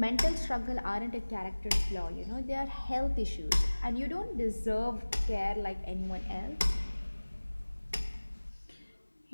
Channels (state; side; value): inverted; both; correlation -1.00